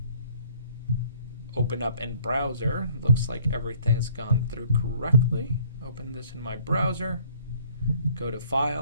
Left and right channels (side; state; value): both; inverted; correlation -0.56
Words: Open up in browser. Looks like everything's gone through correctly. Open this in my browser. Go to